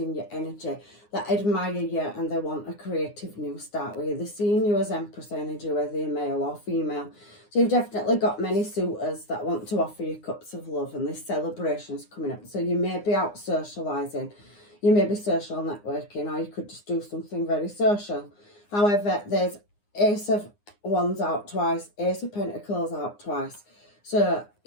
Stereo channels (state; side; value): late; right; 9.7 ms